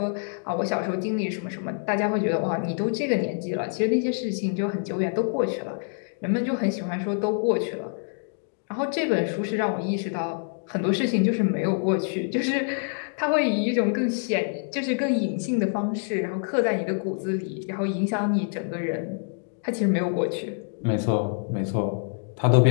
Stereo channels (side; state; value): right; silent; 61 dB below the other